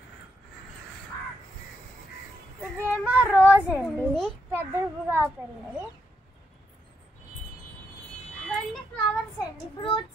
ఇదేమో రోజ్ అండి, పెద్దగా పెరిగింది. ఇవన్నీ ఫ్లవర్స్ అండి,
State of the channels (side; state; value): both; normal; correlation 0.80